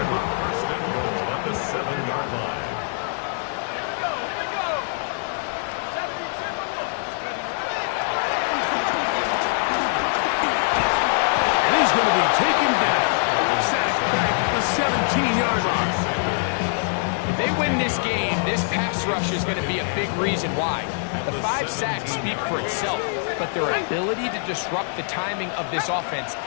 line. 1st and goal at the 7-yard line. Here we go. Here we go. 70 Timberwolves. And he's going to be taken down. Sacked back at the 17-yard line. If they win this game, this pass rush is going to be a big reason why. The 5 sacks speak for itself, but their ability to disrupt the timing of this offense,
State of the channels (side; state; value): right; silent; 63 dB below the other